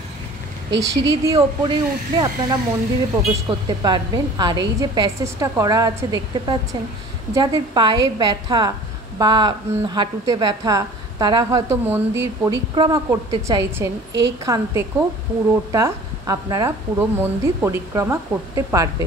এই সিঁড়ি দিয়ে ওপরে উঠলে আপনারা মন্দিরে প্রবেশ করতে পারবেন। আর এই যে প্যাসেজটা করা আছে দেখতে পাচ্ছেন, যাদের পায়ে ব্যথা বা হাঁটুতে ব্যথা, তারা হয়তো মন্দির পরিক্রমা করতে চাইছেন, এইখান থেকেও পুরোটা আপনারা পুরো মন্দির পরিক্রমা করতে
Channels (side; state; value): both; normal; correlation 0.45